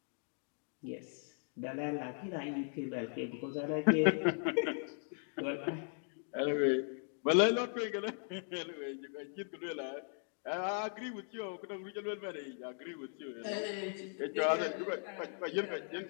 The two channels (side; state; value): right; silent; 52 dB below the other